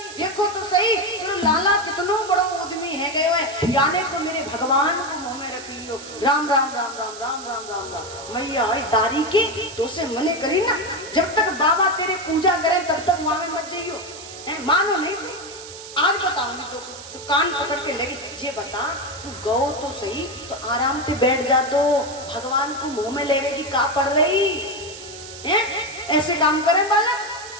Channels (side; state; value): right; noise; hiss, 14 dB below the sound